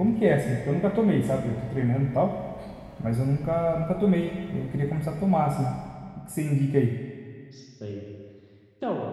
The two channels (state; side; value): identical; both; correlation 1.00